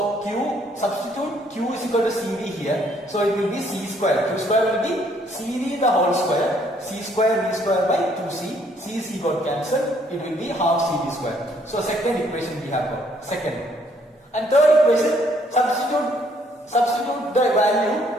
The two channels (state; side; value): normal; both; correlation 0.66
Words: substitute Q is equal to CV here. So it will be C square. Q square will be CV the whole square. C square V square by 2C. C got cancelled. It will be half CV square. So second equation we have got. Second. And third equation, substitute the value